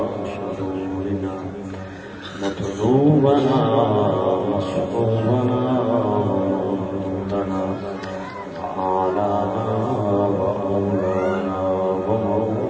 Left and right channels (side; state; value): both; identical; correlation 1.00